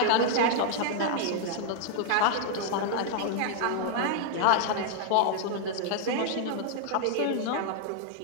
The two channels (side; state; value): both; different; correlation 0.00